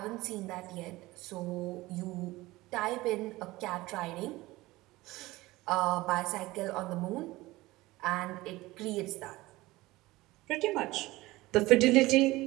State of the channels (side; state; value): left; quieter; 19.4 dB